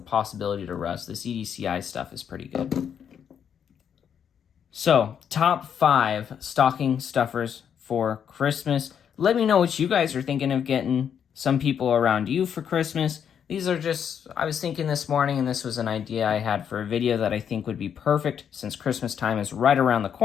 to rust, this EDCI stuff is pretty good. So, top 5 stocking stuffers for Christmas. Let me know what you guys are thinking of getting some people around you for Christmas. These are just, I was thinking this morning, and this was an idea I had for a video that I think would be perfect since Christmas time is right around the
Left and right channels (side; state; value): right; quieter; 8.1 dB